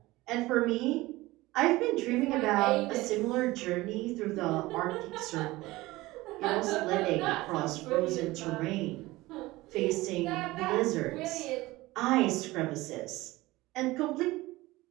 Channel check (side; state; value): left; quieter; 19.4 dB